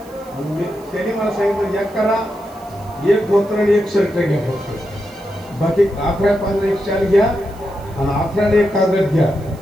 त्यांनी मला सांगितलं एक करा, एक धोतर आणि एक शर्ट घ्या फक्त, बाकी 11-15 एक शाल घ्या आणि 11 एक कागद घ्या,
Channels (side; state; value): right; noise; hiss, 26 dB below the sound